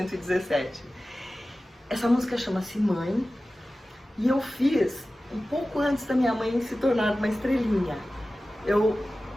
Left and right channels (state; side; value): normal; both; correlation 0.96